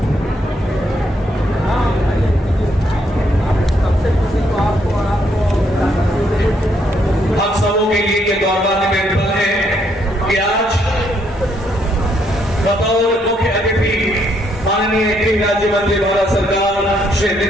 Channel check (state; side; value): normal; both; correlation 0.73